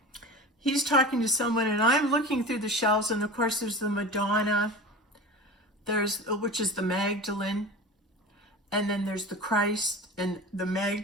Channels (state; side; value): normal; both; correlation 0.33